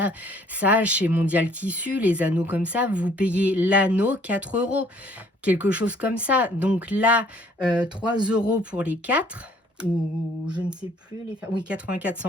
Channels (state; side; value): normal; both; correlation 0.60